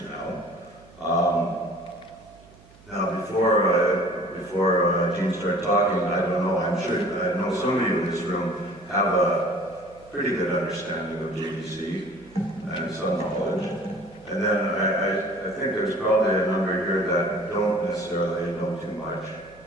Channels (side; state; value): right; noise; hum, 26 dB below the sound